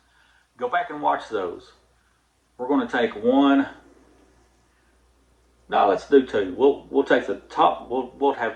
go back and watch those. We're going to take one. No, let's do two. We'll take the top. We'll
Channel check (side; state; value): both; identical; correlation 1.00